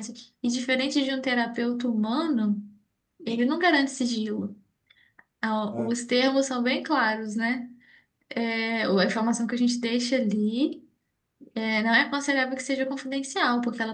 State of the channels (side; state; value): both; identical; correlation 1.00